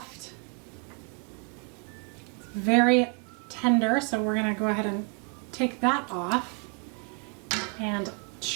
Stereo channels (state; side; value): quieter; left; 36.7 dB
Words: It's very tender, so we're gonna go ahead and take that off and